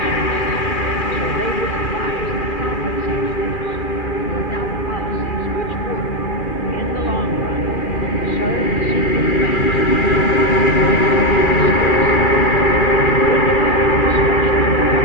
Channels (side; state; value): right; late; 2.4 ms